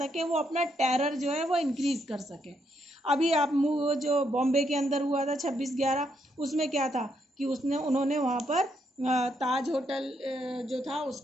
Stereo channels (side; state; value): both; normal; correlation 0.76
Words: वो अपना टेरर जो है वो इंक्रीज़ कर सके। अभी आप जो बॉम्बे के अंदर हुआ था 26/11, उसमें क्या था कि उन्होंने वहाँ पर ताज होटल जो था